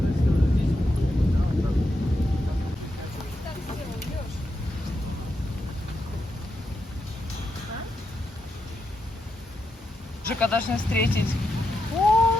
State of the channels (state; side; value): normal; both; correlation 0.85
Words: Жека должны встретить.